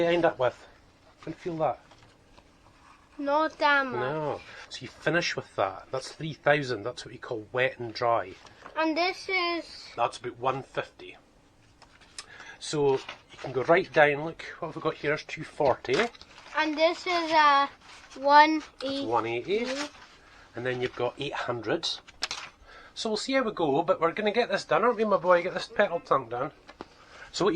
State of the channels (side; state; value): both; identical; correlation 1.00